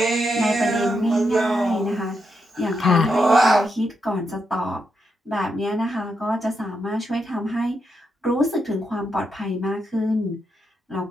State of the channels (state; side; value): normal; both; correlation 0.83